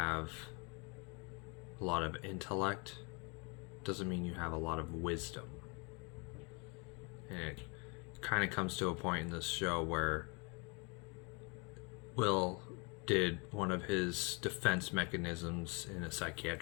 a lot of intellect doesn't mean you have a lot of wisdom. And it kind of comes to a point in this show where Will did one of his defense mechanisms in a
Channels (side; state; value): right; quieter; 31.8 dB